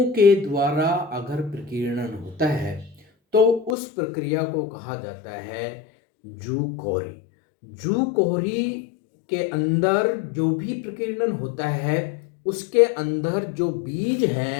के द्वारा अगर प्रकीर्णन होता है तो उस प्रक्रिया को कहा जाता है जू क्वेरी। जू क्वेरी के अंदर जो भी प्रकीर्णन होता है उसके अंदर जो बीज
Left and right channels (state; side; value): drops out; right; at 3.8 s